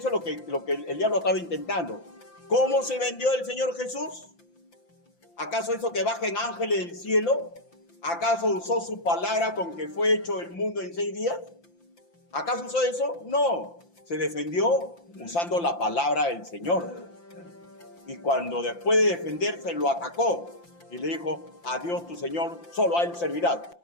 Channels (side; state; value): right; late; 5.8 ms